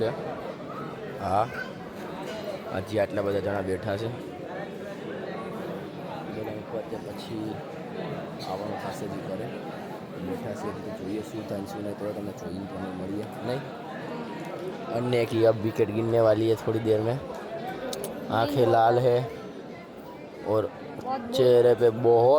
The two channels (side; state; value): both; identical; correlation 1.00